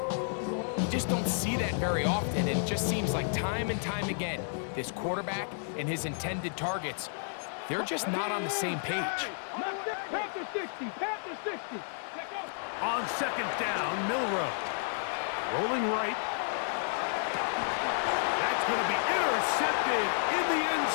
just don't see that very often. And it just seems like time and time again, this quarterback and his intended targets, they're just not on the same page. Panther 60. Panther 60. On second down, Milroe. Rolling right. That's going to be intercepted in the end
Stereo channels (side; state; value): right; silent; 57 dB below the other